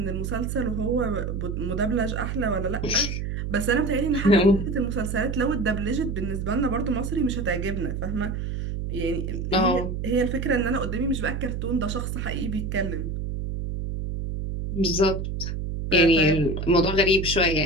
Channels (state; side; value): noise; right; hum, 3 dB below the sound